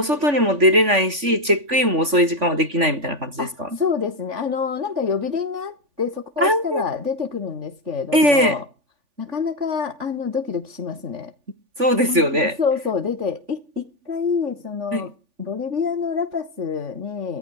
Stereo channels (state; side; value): late; left; 3.5 ms